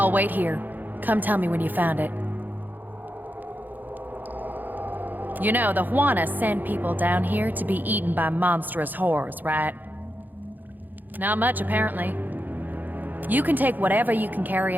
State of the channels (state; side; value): late; left; 0.086 ms